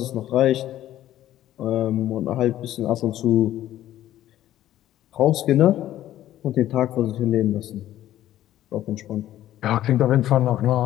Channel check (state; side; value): quieter; right; 13.1 dB